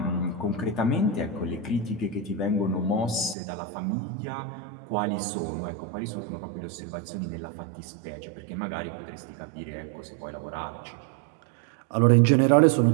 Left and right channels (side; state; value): left; drops out; at 3.4 s